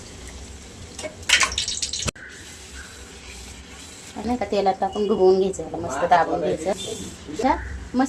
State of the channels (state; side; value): identical; both; correlation 1.00